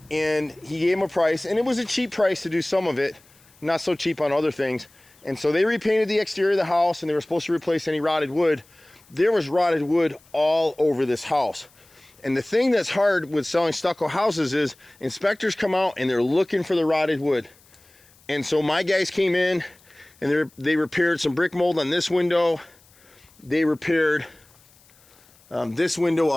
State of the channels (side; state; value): left; noise; hiss, 29 dB below the sound